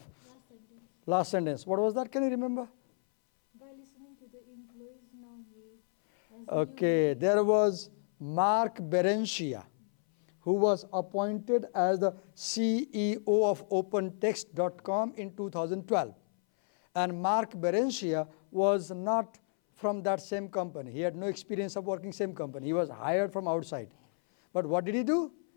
Last sentence. What was that? Can you remember? By listening to the employees, now he has Okay. There was Mark Berenshia, who was appointed as the CEO of OpenText.com in 2012. And Mark Berenshia was not from that same company. He had no experience of working same company. He was hired from outside. But what did he do?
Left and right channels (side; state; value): right; silent; 57 dB below the other